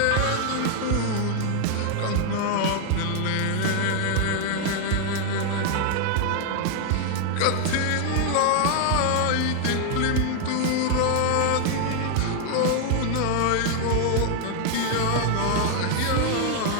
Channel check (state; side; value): different; both; correlation 0.00